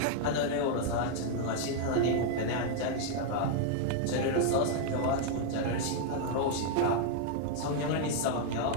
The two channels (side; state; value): both; different; correlation 0.00